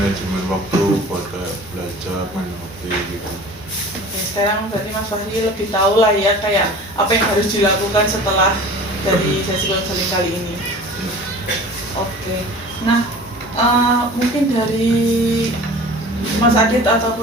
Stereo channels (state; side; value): normal; both; correlation 0.41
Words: waktu buat kayak belajar, main HP gitu. Oke, sekarang berarti Mas Fahri lebih tahu lah ya kayak apa yang harus dilakukan setelah dari sesi konseling kali ini. Oke, nah mungkin dari Mas Adit